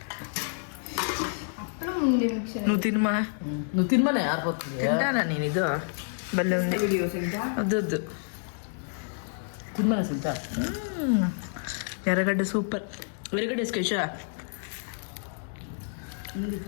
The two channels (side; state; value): right; silent; digital silence